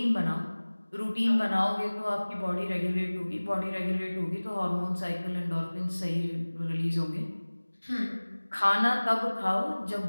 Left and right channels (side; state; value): both; inverted; correlation -1.00